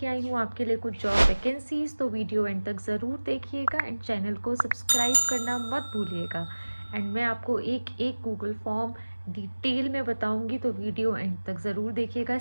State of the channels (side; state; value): both; inverted; correlation -1.00